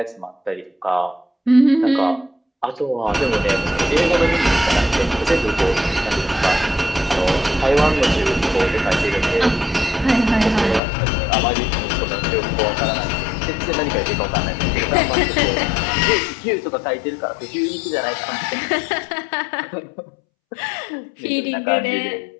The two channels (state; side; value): drops out; right; at 10.8 s